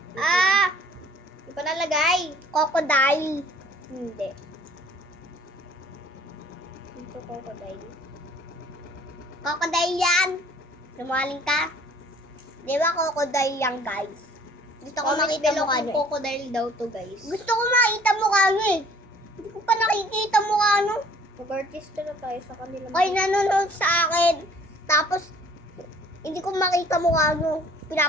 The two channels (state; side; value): normal; both; correlation 0.55